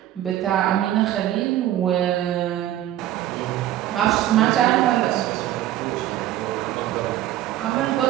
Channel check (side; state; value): left; quieter; 13.1 dB